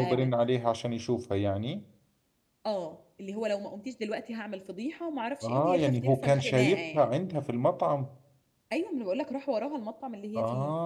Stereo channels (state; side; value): identical; both; correlation 1.00